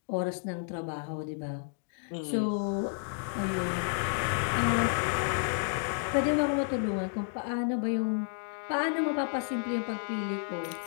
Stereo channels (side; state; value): right; silent; 57 dB below the other